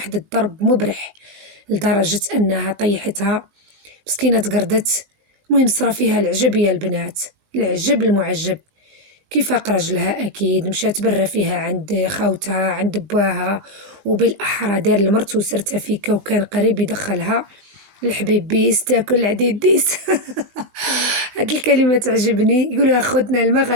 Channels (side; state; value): left; late; 19 ms